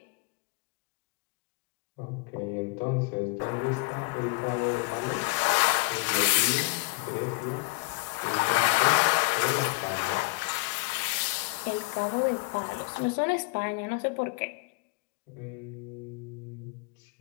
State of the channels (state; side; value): quieter; right; 25.1 dB